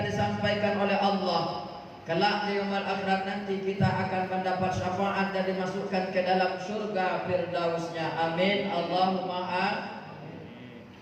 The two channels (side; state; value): both; identical; correlation 1.00